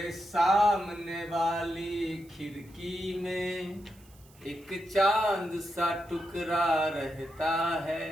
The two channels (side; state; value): right; noise; hiss, 27 dB below the sound